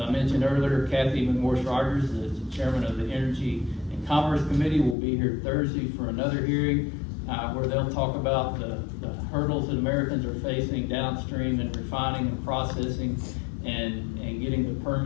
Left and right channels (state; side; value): drops out; right; at 5.0 s